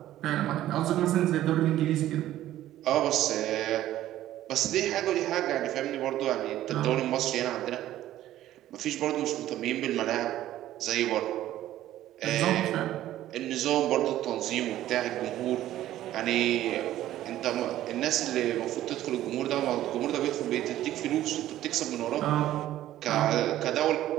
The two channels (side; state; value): left; quieter; 13.5 dB